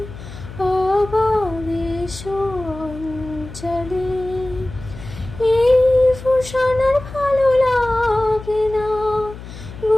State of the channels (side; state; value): left; noise; hum, 14 dB below the sound